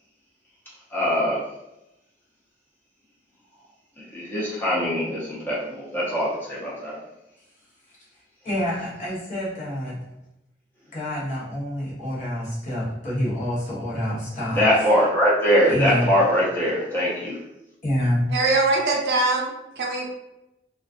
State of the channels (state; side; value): normal; both; correlation 0.40